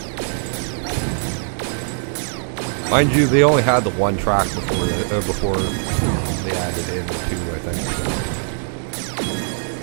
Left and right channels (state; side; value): silent; left; 63 dB below the other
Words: Mind you, they only had the one track before they added it.